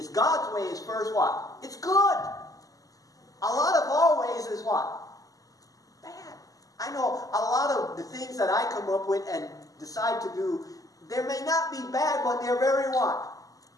God's way is first what? It's good. A lot of our ways is what? Bad. I know a lot of the things that I come up with and decide to do, they may not be bad, but they're very what?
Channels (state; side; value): late; right; 0.17 ms